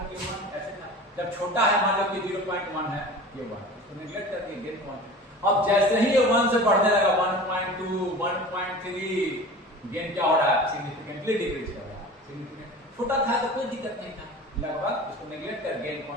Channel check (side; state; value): both; normal; correlation 0.37